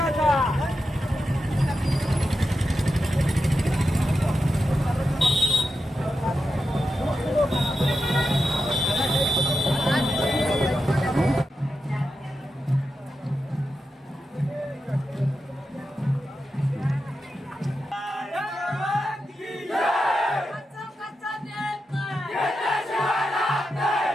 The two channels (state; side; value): normal; both; correlation 0.89